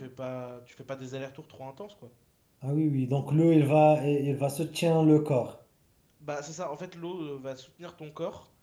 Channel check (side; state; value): both; identical; correlation 1.00